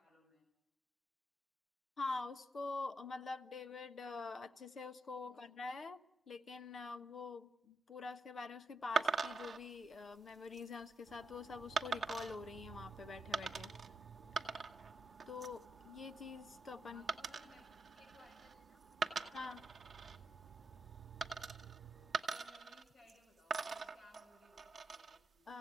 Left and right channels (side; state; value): both; normal; correlation 0.84